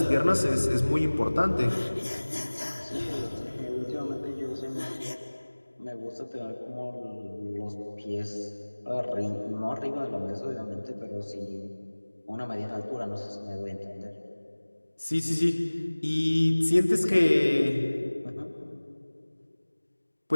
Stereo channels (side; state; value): both; inverted; correlation -1.00